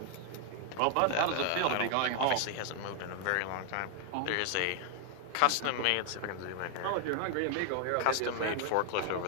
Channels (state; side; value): different; both; correlation 0.00